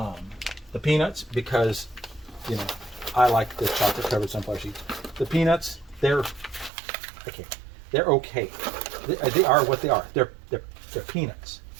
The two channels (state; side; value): drops out; left; at 6.7 s